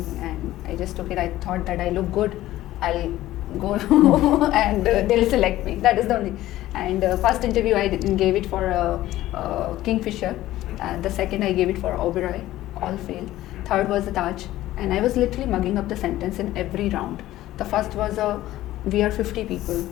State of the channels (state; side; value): quieter; right; 15.1 dB